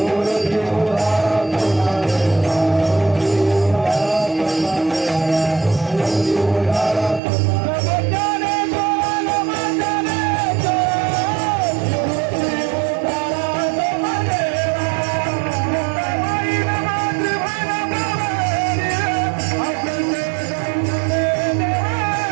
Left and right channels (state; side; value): drops out; left; at 7.2 s